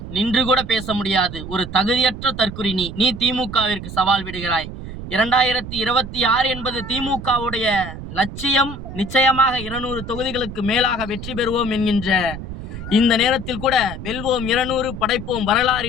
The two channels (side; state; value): right; noise; rumble, 10 dB below the sound